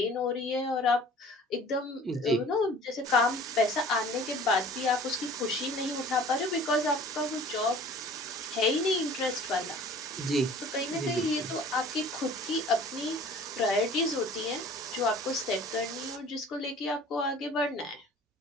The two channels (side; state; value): both; normal; correlation 0.48